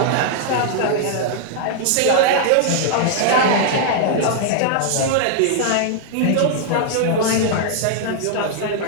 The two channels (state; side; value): different; both; correlation 0.00